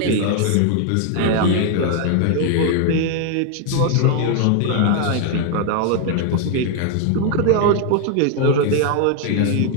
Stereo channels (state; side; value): different; both; correlation 0.00